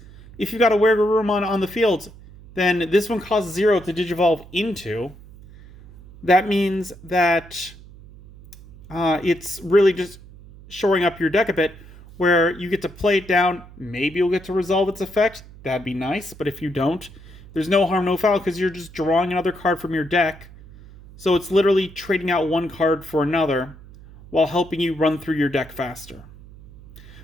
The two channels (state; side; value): noise; right; hum, 20 dB below the sound